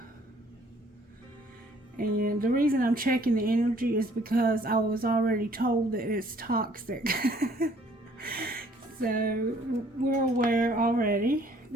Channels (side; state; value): both; normal; correlation 0.60